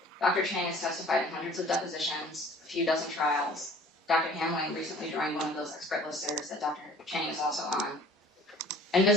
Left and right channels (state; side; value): normal; both; correlation 0.50